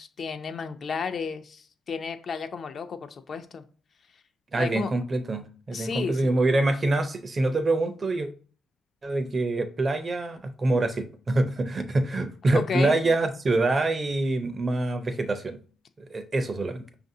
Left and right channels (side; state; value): both; normal; correlation 0.89